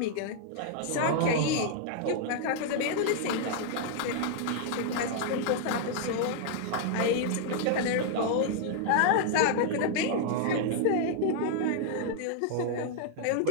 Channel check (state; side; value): different; both; correlation -0.01